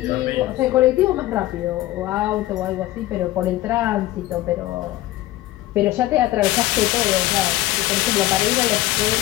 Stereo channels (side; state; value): right; quieter; 16.5 dB